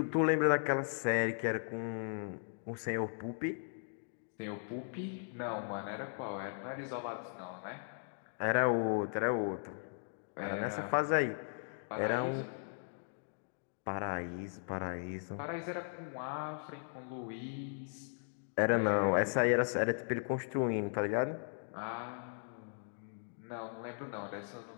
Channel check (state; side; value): silent; right; digital silence